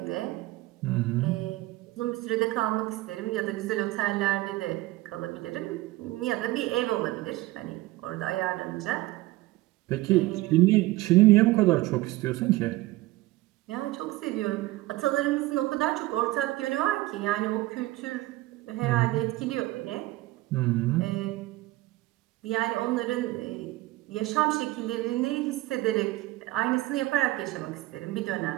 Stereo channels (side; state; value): left; quieter; 18.5 dB